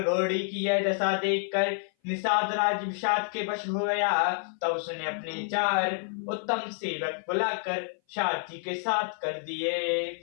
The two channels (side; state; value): right; silent; 57 dB below the other